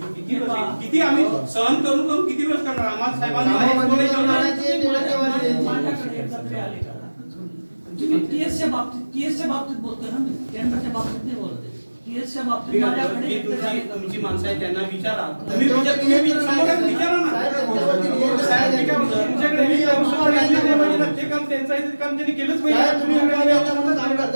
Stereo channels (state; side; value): inverted; both; correlation -1.00